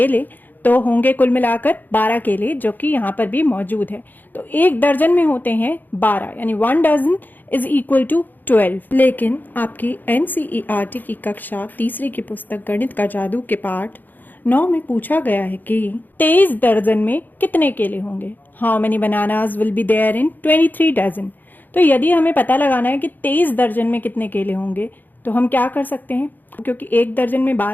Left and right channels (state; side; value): late; right; 0.087 ms